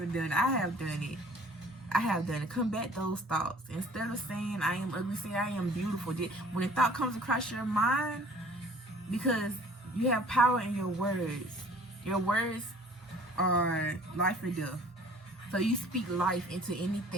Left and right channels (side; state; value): both; normal; correlation 0.52